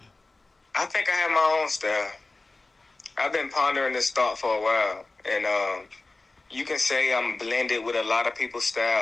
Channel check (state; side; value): quieter; right; 3.3 dB